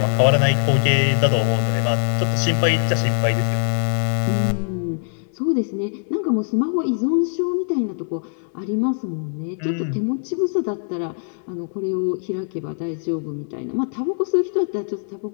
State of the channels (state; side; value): silent; right; digital silence